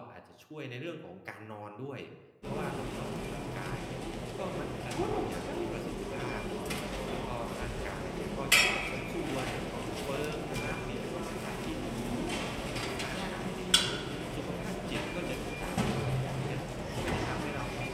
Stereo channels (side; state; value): both; identical; correlation 1.00